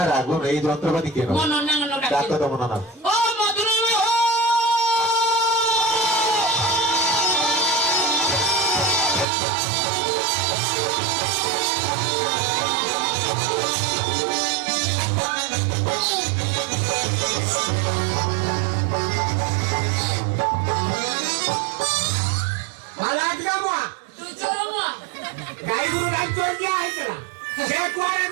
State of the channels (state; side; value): drops out; left; at 9.2 s